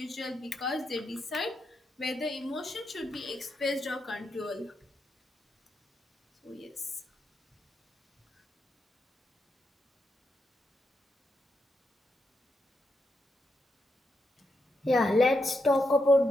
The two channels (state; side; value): normal; both; correlation 0.83